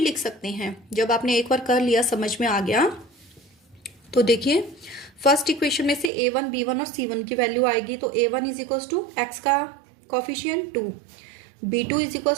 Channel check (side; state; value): left; drops out; at 6.1 s